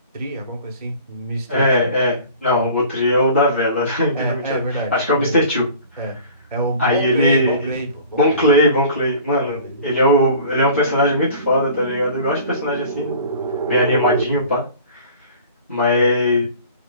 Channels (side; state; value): both; inverted; correlation -0.45